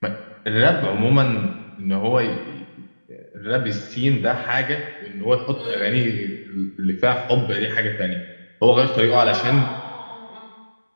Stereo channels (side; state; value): both; inverted; correlation -1.00